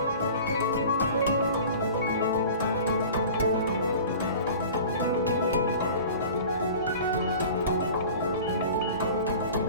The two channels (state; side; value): inverted; both; correlation -0.41